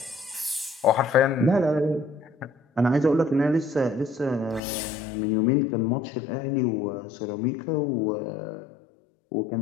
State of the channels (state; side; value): drops out; right; at 4.6 s